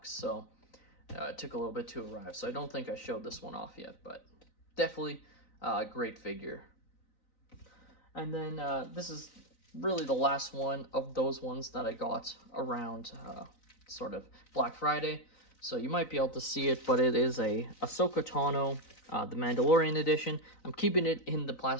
so it took a little bit to arrive. So I don't think I showed this one off yet, but definitely a great figure. And then this is really the last one of those ones that I got around sort of Black Friday. So you might be able to see it, but it is a Ahsoka Tano, the Mandalorian edition. I'm keeping it in the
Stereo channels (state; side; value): late; right; 3.9 ms